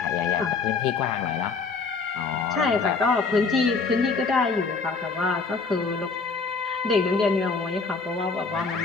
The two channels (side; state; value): right; quieter; 4.5 dB